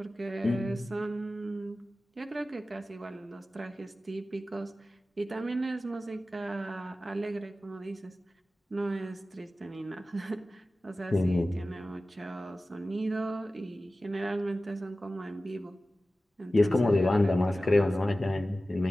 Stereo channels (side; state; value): both; normal; correlation 0.95